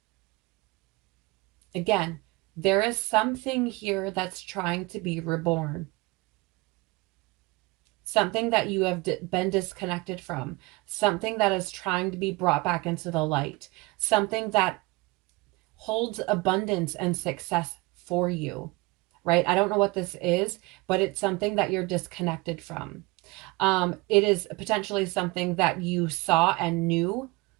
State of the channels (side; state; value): left; quieter; 23.2 dB